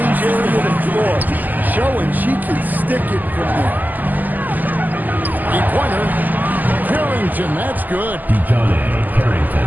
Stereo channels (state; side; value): late; left; 0.084 ms